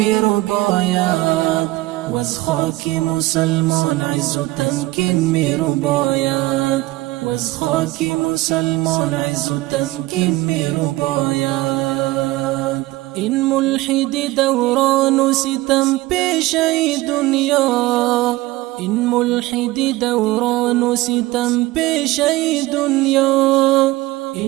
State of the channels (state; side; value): quieter; left; 19.0 dB